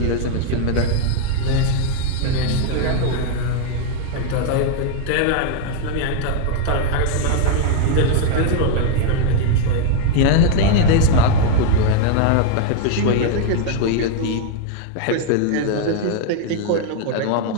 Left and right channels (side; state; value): both; different; correlation 0.00